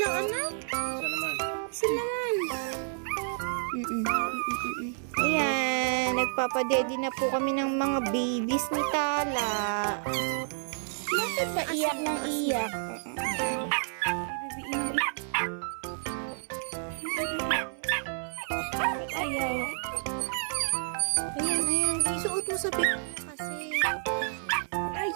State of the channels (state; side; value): silent; left; 56 dB below the other